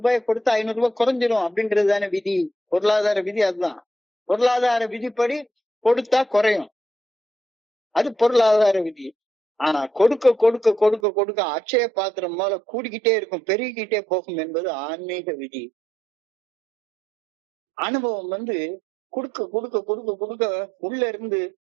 கொடுத்து 500 ரூபாய் குறைஞ்சிரும் அப்படின்றது தானே விதி, பொருளாதார விதி. அதுதான் பொருளாதார விதிப்படி கொடுத்தா குறையும். அது பொருளாதார விதி. ஆனா கொடுக்க கொடுக்க கொடுக்க கொடுக்க அட்சய பாத்திரம் போல கூடிக்கிட்டே இருக்கும், பெருகிக்கிட்டே போகும் என்பது ஆன்மீக விதி. அனுபவம் கொடுக்க கொடுக்க கொடுக்க கொடுக்க உள்ள இருந்து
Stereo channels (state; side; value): drops out; left; at 11.0 s